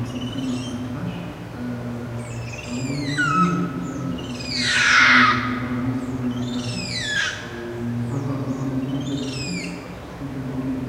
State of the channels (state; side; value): identical; both; correlation 1.00